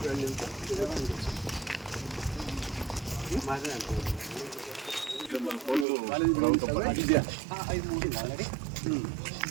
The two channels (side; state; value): left; drops out; at 5.9 s